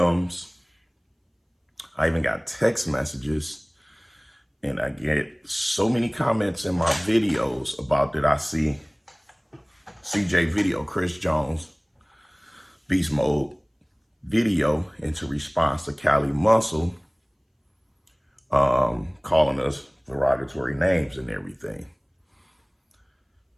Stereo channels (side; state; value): both; identical; correlation 1.00